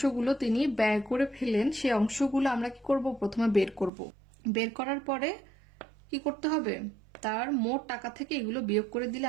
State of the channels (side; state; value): left; drops out; at 3.9 s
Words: তিনি ব্যয় করে ফেলেন সেই অংশগুলো আমরা কি করব, প্রথমে বের করব। বের করার পরে কি করতে হবে, তার মোট টাকা থেকে এগুলো বিয়োগ করে দিলে